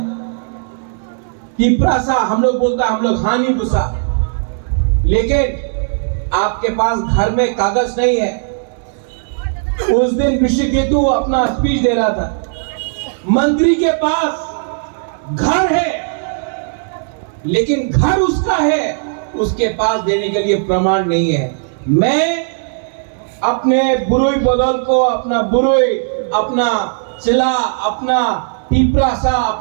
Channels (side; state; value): left; silent; 64 dB below the other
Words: तीपरा सा, हम लोग बोलता है हम लोग हानि गुस्सा, लेकिन आपके पास घर में कागज नहीं है। उस दिन ऋषिकेतु अपना स्पीच दे रहा था, मंत्री के पास घर है, लेकिन घर उसका है, उसके पास देने के लिए प्रमाण नहीं है। मैं अपने बुरुई बदल को, अपना बुरुई, अपना चिला, अपना पीपरा सा,